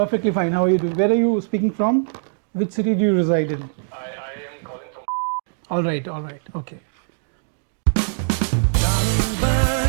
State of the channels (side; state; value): left; silent; digital silence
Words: fine. How are you doing? Where are you speaking from? Which city do you reside in? I am calling from. All right, okay. Darling